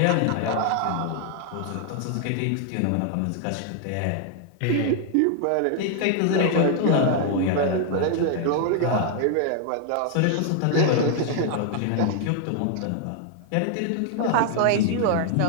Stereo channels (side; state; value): both; different; correlation 0.00